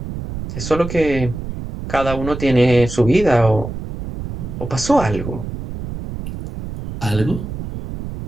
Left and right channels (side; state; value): right; noise; rumble, 8 dB below the sound